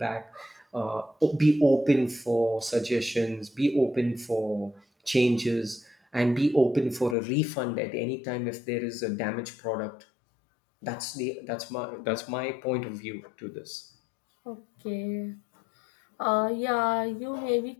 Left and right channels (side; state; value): right; drops out; at 7.2 s